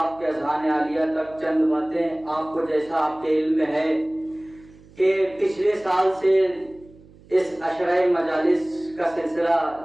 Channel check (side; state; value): right; noise; hum, 25 dB below the sound